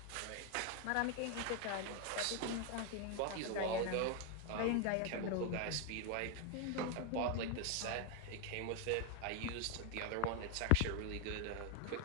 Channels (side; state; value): both; different; correlation 0.01